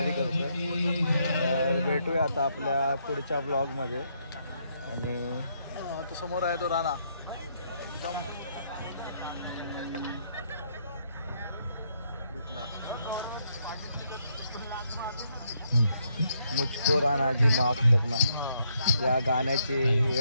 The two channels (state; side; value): inverted; both; correlation -0.75